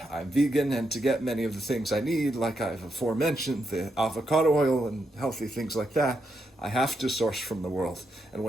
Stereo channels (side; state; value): both; normal; correlation 0.82